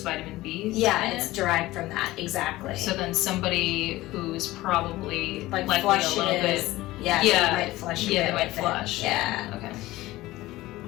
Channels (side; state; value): right; quieter; 17.7 dB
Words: vitamin B? Yeah, it's derived from that, exactly. So then somebody who's probably like likely flushes, a little bit. yeah, Yeah, they might flush. they might flush. Yeah. Okay.